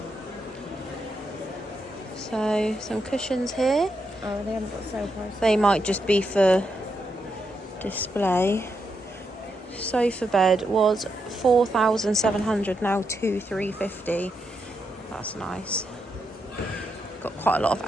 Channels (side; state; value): both; normal; correlation 0.82